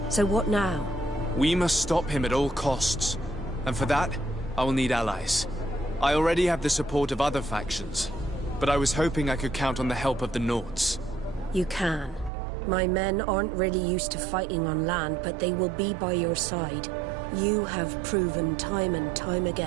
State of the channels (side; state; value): left; drops out; at 12.3 s